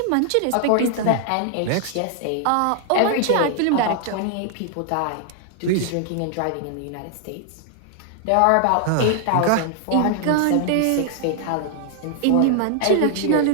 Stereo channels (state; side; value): different; both; correlation 0.00